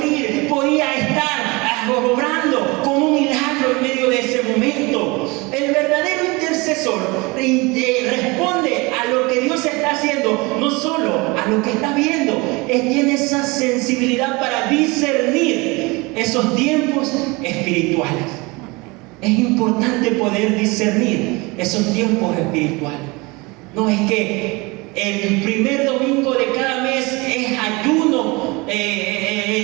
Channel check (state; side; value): quieter; left; 25.3 dB